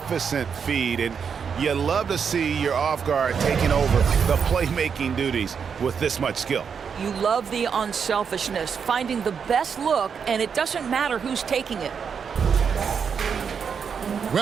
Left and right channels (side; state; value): left; quieter; 6.6 dB